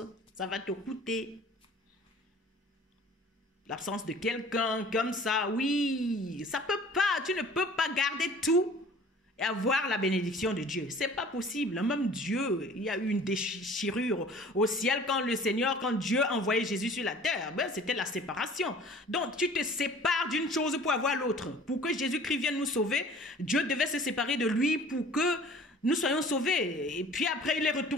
Ça va te coûter. L'absence de quelqu'un comme ça, oui, ça peut pas, tu ne peux pas garder tout et avoir la bénédiction de Dieu. C'est pas possible. Même Dieu, il y a eu une déchirure au ciel quand Dieu a envoyé Jésus sur la terre. Ben, c'était la séparation. Donc, tu te sépares d'une chose pour avoir l'autre. Pour que Jésus-Christ vienne nous sauver, Dieu devait se séparer de lui pour que nous soyons sauvés. Et puis après, il est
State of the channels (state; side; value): normal; both; correlation 0.48